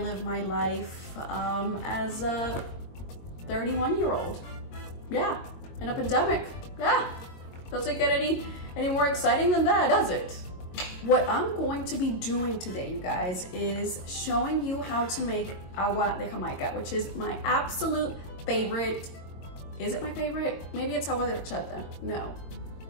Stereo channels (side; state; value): right; late; 22 ms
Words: live my life as a 31-year-old. Yeah, in a pandemic. Yeah, doesn't get any more exciting than that, does it? What I'm going to be doing today, you guys, is showing you how to make agua de Jamaica, which is my absolute favorite. Is it my favorite? Maybe it's agua de horchata. No.